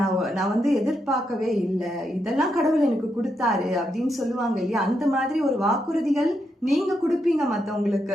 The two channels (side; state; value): both; normal; correlation 0.82